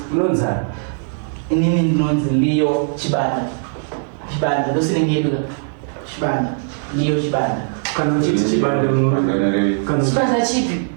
unonzani inini ndinonzi Liyo Chibanda ndosinenyedula Chibanda Liyo Chibanda kana uchiti chibanda Chibanda chipi?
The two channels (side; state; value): left; silent; digital silence